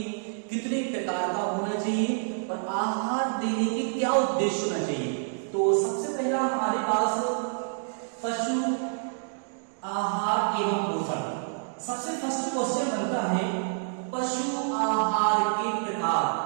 कितने प्रकार का होना चाहिए और आहार देने के क्या उद्देश्य होना चाहिए। तो सबसे पहला हमारे पास पशु आहार एवं पोषण। सबसे फर्स्ट क्वेश्चन बनता है पशु आहार के प्रकार,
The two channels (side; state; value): left; silent; digital silence